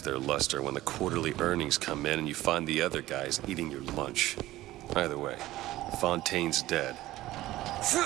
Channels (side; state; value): left; quieter; 16.2 dB